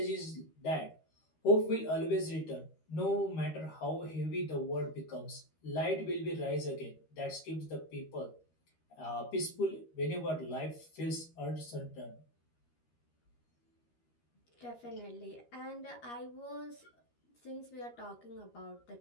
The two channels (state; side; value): late; right; 13 ms